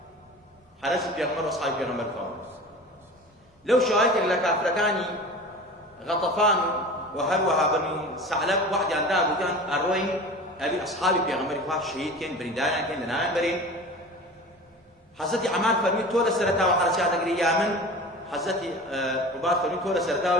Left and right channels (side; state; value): both; normal; correlation 0.36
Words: حرس بيغمر وأصحاب بيغمر فاهم لو شايت إلا كافركاني غطفان وهروها بني ثعلب واحد عندها بوتان أروين أبي أصحابي بيغمر فاهم شهيد كان بريدان كان لنام برين حضرت عمار فرمي تولى سرتا وحرسات أجري يامن حضرت عباد فرمي تولى سرتا